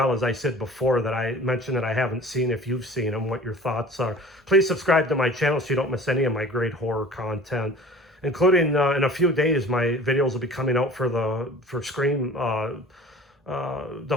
as I said before, that I mentioned that I haven't seen, if you've seen them, what your thoughts are. Please subscribe to my channel so you don't miss any of my great horror content, including in a few days my videos will be coming out for Scream, the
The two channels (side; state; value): both; normal; correlation 0.43